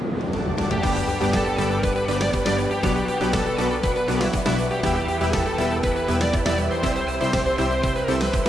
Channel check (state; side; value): normal; both; correlation 0.86